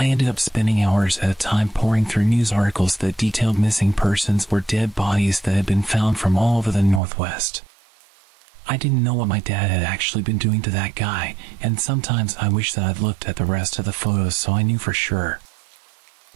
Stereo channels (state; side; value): drops out; left; at 7.0 s